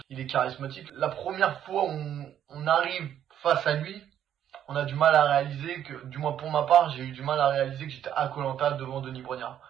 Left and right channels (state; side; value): quieter; left; 10.2 dB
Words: il est charismatique. La première fois où on arrive face à lui, on a du mal à réaliser que, du moins pour ma part, j'ai eu du mal à réaliser que j'étais à Koh-Lanta devant Denis Brognard.